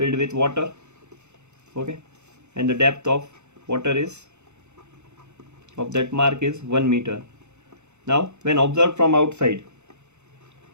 with water. Okay, and the depth of water is of that mark is 1 meter. Now when observed from outside,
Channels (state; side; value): late; left; 0.83 ms